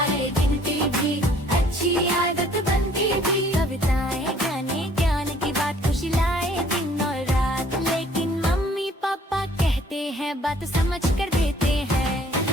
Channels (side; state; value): both; normal; correlation 0.58